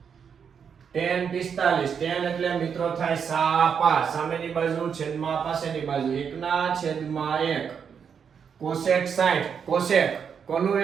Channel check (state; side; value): quieter; left; 7.0 dB